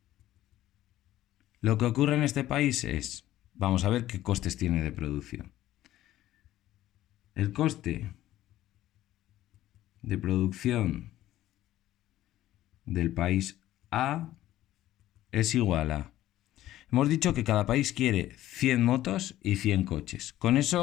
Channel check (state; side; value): quieter; right; 14.2 dB